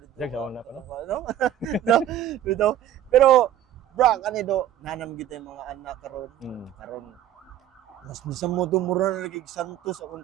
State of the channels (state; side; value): quieter; left; 11.3 dB